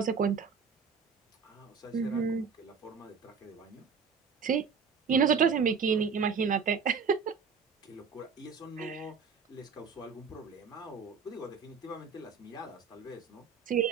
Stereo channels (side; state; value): left; quieter; 5.9 dB